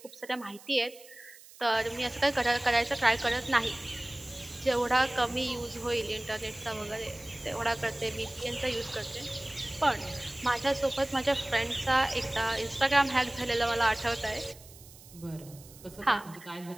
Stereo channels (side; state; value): right; noise; hiss, 21 dB below the sound